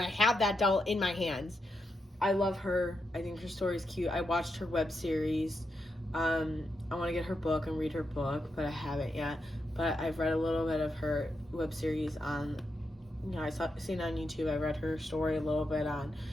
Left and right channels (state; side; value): normal; both; correlation 0.85